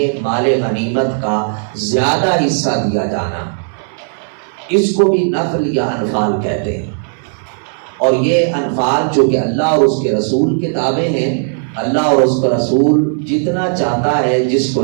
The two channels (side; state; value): left; silent; 70 dB below the other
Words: مال غنیمت کا زیادہ حصہ دیا جانا، اس کو بھی نفل یا انفال کہتے ہیں۔ اور یہ انفال جو کہ اللہ اور اس کے رسول کے تابع ہیں، اللہ اور اس کا رسول جتنا چاہتا ہے جس